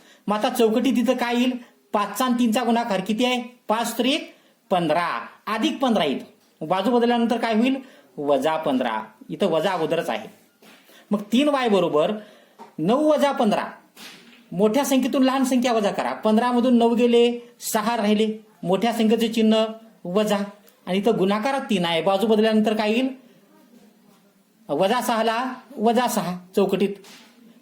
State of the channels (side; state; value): both; identical; correlation 1.00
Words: मग आता चौकटी तिथं काय येईल? 5चा आणि 3चा गुणाकार किती आहे? 5 त्रिक 15 अधिक 15 येईल. बाजू बदलल्यानंतर काय होईल? वजा 15. इथं वजा अगोदरच आहे. मग 3y बरोबर 9 वजा 15. मोठ्या संख्येतून लहान संख्या वजा करा. 15 मधून 9 गेले, 6 राहिले. मोठ्या संख्येचे चिन्ह वजा आणि इथं गुणाकारात 3 आहे. बाजू बदलल्यानंतर काय येईल? -6ला -6 चौकटीत.